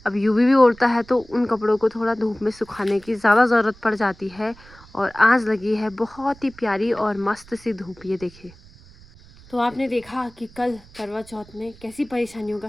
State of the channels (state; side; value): noise; right; rumble, 24 dB below the sound